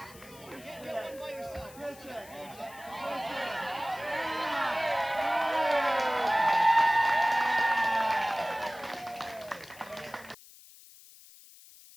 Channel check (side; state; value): left; noise; hiss, 21 dB below the sound